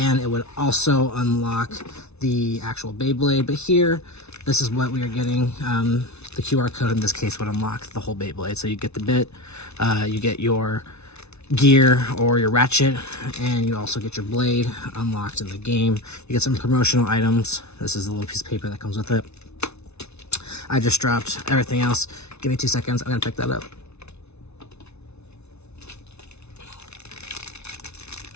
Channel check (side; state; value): right; late; 0.81 ms